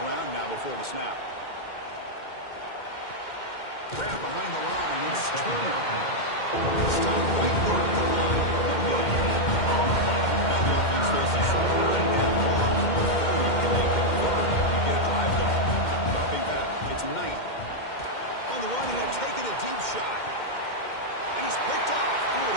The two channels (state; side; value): late; right; 2.1 ms